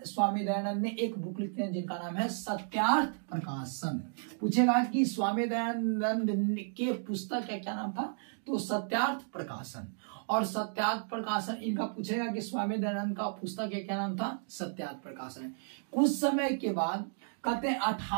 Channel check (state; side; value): silent; left; digital silence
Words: स्वामी दयानंद ने एक बुक लिखते हैं जिनका नाम है सत्यार्थ प्रकाशन। पूछेगा कि स्वामी दयानंद के पुस्तक का क्या नाम था, तो सत्यार्थ प्रकाशन। और सत्यार्थ प्रकाशन इनका पूछेगा कि स्वामी दयानंद का पुस्तक का क्या नाम था, सत्यार्थ प्रकाशन। कुछ समय के बाद